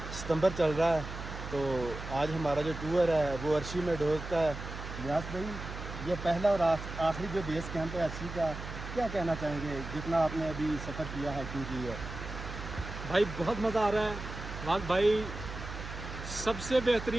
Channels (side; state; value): right; noise; hum, 9 dB below the sound